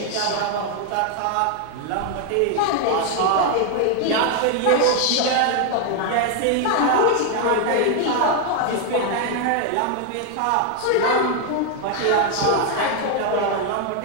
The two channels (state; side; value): different; both; correlation 0.01